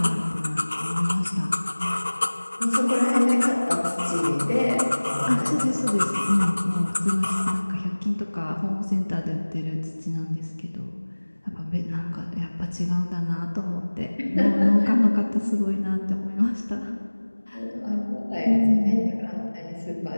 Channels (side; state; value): both; inverted; correlation -1.00